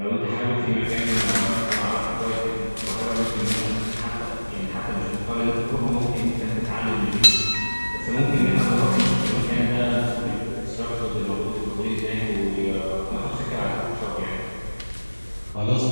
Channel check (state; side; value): inverted; both; correlation -1.00